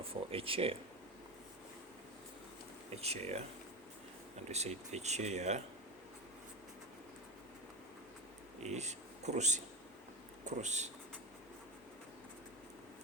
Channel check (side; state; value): both; normal; correlation 0.20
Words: for a chair. And we said a chair is kursi.